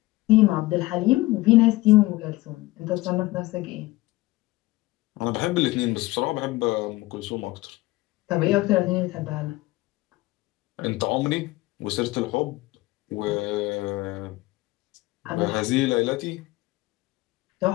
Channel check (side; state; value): right; quieter; 19.5 dB